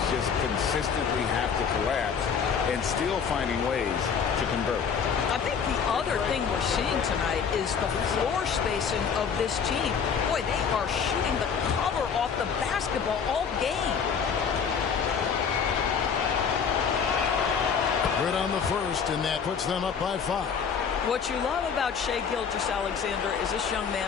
just consistently have to collapse and still finding ways to convert. I think the other thing we're seeing tonight is the floor spacing of this team. Boy, they are shooting the cover off the basketball all game. Good on the first, and that puts them up by 5. What you love about Shai Gilgeous-Alexander is this young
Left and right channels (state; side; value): quieter; right; 6.6 dB